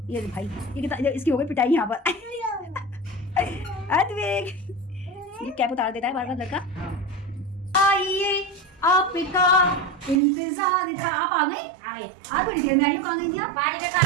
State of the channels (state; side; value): drops out; left; at 10.2 s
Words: ये भाई ये इसकी हो गई पिटाई यहाँ पर। अद्वैत ये कैप उतार देता है बार बार लड़का। आइए आपका इंतजार था। आप आ गई? आज बड़ी देर में आई हो। कहाँ गई थी आप? बाजरे का